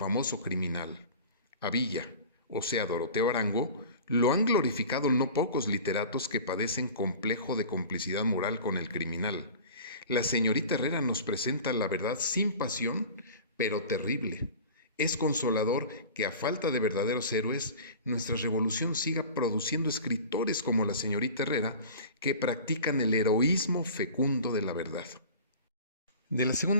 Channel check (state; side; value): inverted; both; correlation -0.39